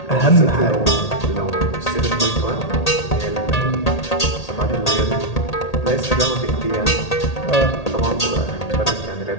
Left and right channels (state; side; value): late; right; 1.8 ms